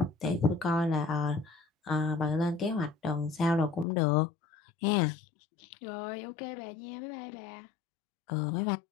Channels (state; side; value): drops out; right; at 3.9 s